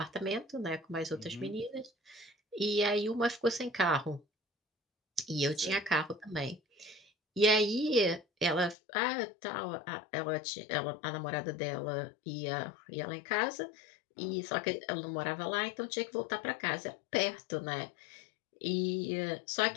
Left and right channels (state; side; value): drops out; right; at 8.8 s